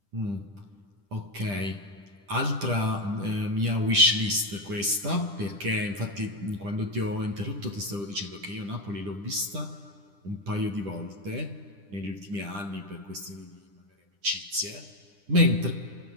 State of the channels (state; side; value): late; left; 10 ms